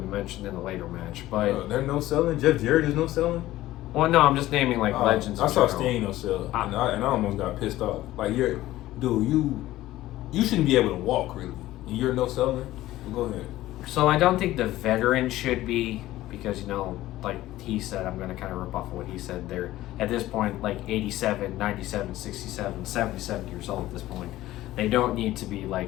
mentioned in a later match. But they're no selling? Jeff Jarrett is no selling? Well, no, I'm just naming, like, legends. I saw Sting no sell, and I almost got pissed off. Like, you shouldn't be able to walk, really. You're no seller? Well, go ahead. So I don't think the veterans should be, because, like he said, I'm going to kind of rip off of what he said. They're, at this point, like 87, 97, 67, 77 years old at this point. They don't need to be,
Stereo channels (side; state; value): right; quieter; 15.7 dB